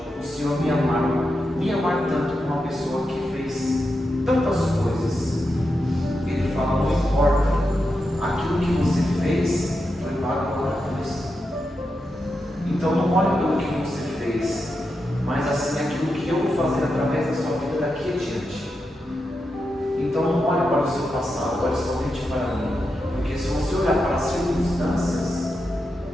o Senhor me amar tanto com uma pessoa que fez tantas coisas? Ele fala, não importa, aquilo que você fez foi pago lá na cruz. Então não olhe pelo que você fez, mas assim aquilo que eu vou fazer através da sua vida daqui adiante. Então não olhe para o seu passado, olhe somente para mim. Porque se você olhar para as circunstâncias,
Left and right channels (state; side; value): normal; both; correlation 0.87